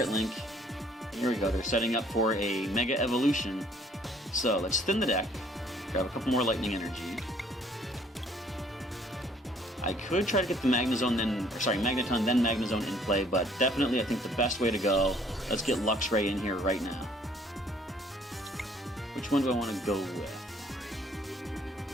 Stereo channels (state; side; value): normal; both; correlation 0.60